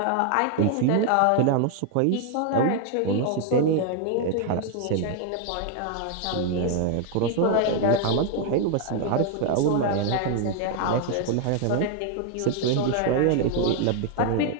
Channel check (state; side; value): different; both; correlation 0.00